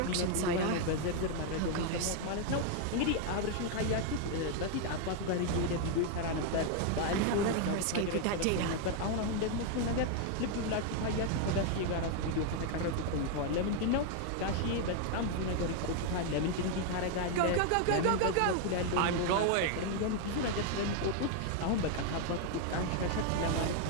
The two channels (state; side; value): different; both; correlation 0.00